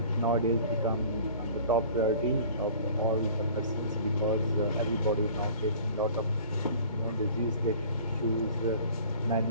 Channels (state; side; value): inverted; both; correlation -0.46